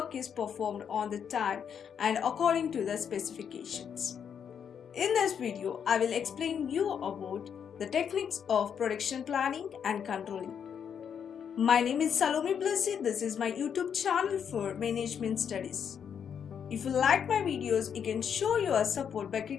is performed on the time and according to the specifications. In this video, I will explain you about the techniques of production planning and controlling. My name is Salome Blessy. This is my YouTube channel for management studies. If you like my videos, you can show your support by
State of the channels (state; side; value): quieter; right; 7.7 dB